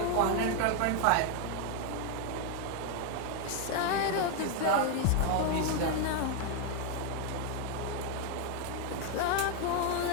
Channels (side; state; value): both; different; correlation 0.01